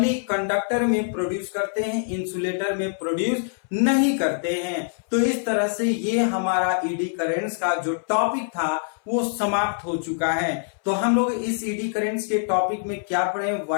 कंडक्टर में प्रोड्यूस करते हैं, इंसुलेटर में प्रोड्यूस नहीं करते हैं। तो इस तरह से ये हमारा ईडी करेंट्स का जो टॉपिक था वो समाप्त हो चुका है। तो हम लोग इस ईडी करेंट्स के टॉपिक में क्या पढ़े,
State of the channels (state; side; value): silent; right; 62 dB below the other